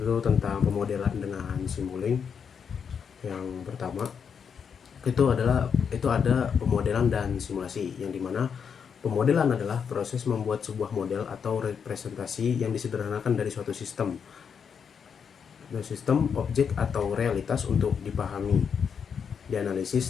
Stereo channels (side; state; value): right; quieter; 6.9 dB